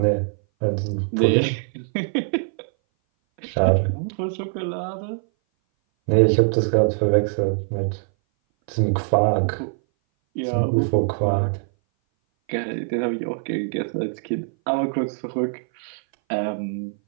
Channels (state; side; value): silent; left; 59 dB below the other